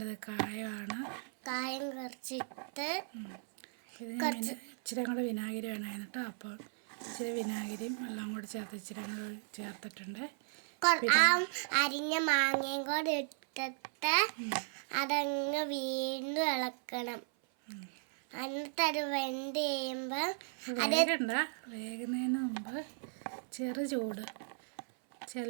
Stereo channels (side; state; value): left; silent; 54 dB below the other